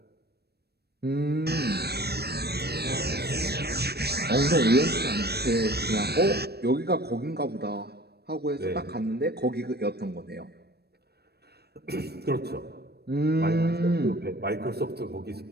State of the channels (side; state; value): left; late; 0.47 ms